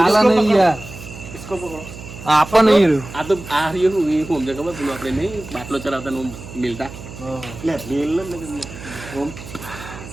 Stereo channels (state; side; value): noise; right; hum, 14 dB below the sound